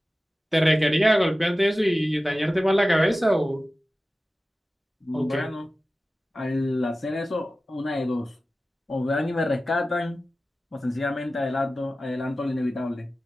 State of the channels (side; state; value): both; normal; correlation 0.95